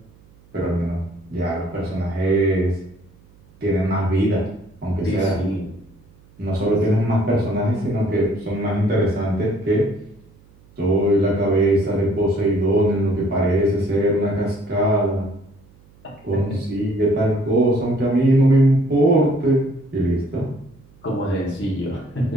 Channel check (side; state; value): right; noise; hum, 28 dB below the sound